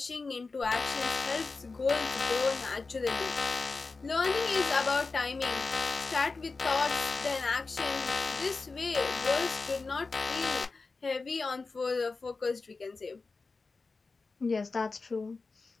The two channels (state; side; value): quieter; right; 4.0 dB